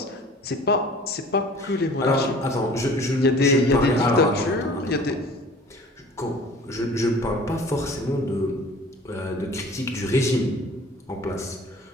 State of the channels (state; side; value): normal; both; correlation 0.46